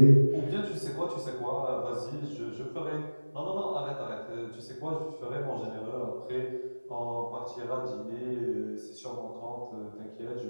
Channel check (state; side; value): inverted; both; correlation -1.00